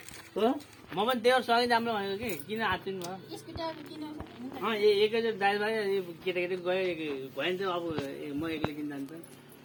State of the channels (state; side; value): identical; both; correlation 1.00